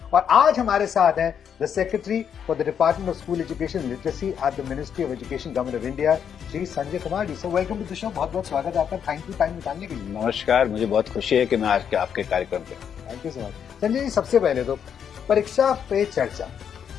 और आज हमारे साथ हैं the secretary for the department of school education literacy at the ministry of education government of India Shri Sanjay Kumar ji. Sir welcome to the show, बहुत बहुत स्वागत है आपका। थैंक यू टाइम निकालने के लिए। नमस्कार, मुझे बहुत खुशी है कि मैं आज के आपके कार्यक्रम पे। Thank you so much. Sanjay ji, सबसे पहले तो परीक्षा पे चर्चा,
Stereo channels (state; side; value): quieter; right; 8.0 dB